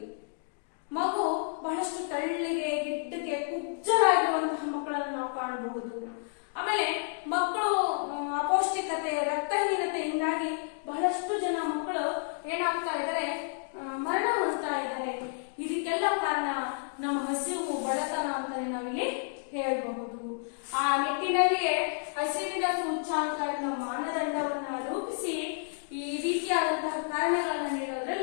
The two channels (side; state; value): right; silent; digital silence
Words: ಮಗು ಬಹಳಷ್ಟು ತೆಳ್ಳಗೆ, ಗಿಡ್ಡಗೆ, ಕುಬ್ಜರಾಗಿರುವಂತಹ ಮಕ್ಕಳನ್ನು ನಾವು ಕಾಣಬಹುದು. ಆಮೇಲೆ ಮಕ್ಕಳು ಅಪೌಷ್ಟಿಕತೆ, ರಕ್ತಹೀನತೆಯಿಂದಾಗಿ ಬಹಳಷ್ಟು ಜನ ಮಕ್ಕಳು ಏನಾಗ್ತಾ ಇದ್ದಾರೆ, ಮರಣ ಹೊಂದ್ತಾ ಇದ್ದಾರೆ. ಇದಕ್ಕೆಲ್ಲ ಕಾರಣ ನಮ್ಮ ಹಸಿವು, ಬಡತನ ಅಂತಾನೆ ನಾವಿಲ್ಲಿ ಹೇಳಬಹುದು. ಆ ನಿಟ್ಟಿನಲ್ಲಿಯೇ ಹಸಿವಿನ ಸೂಚ್ಯಂಕ ಎನ್ನುವ ಮಾನದಂಡವನ್ನ ರೂಪಿಸಿ ಈ ರೀತಿಯಾದಂತಹ ಕಾರಣಗಳನ್ನ